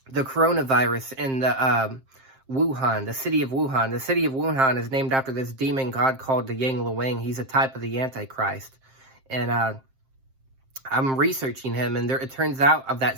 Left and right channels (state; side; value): late; left; 7.6 ms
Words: coronavirus in the Wuhan, the city of Wuhan. The city of Wuhan is named after this demon god called the Yang Luang. He's a type of the Antichrist. And I'm researching him, and it turns out of